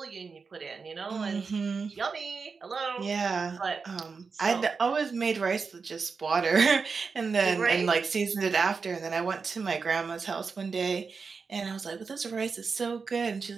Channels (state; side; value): quieter; left; 5.0 dB